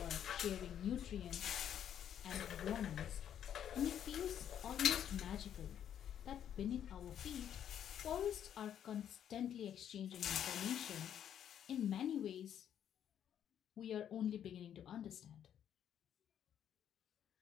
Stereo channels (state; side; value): quieter; right; 9.7 dB